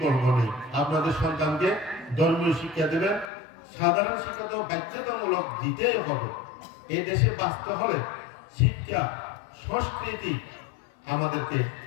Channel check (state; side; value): drops out; right; at 3.2 s